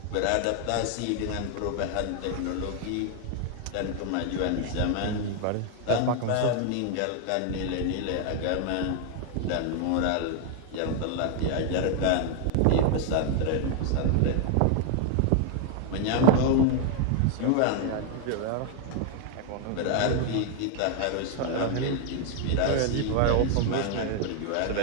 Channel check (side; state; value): both; different; correlation 0.00